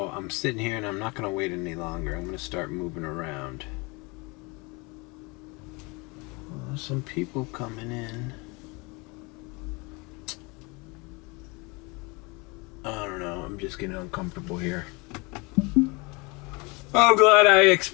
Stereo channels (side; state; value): right; quieter; 27.7 dB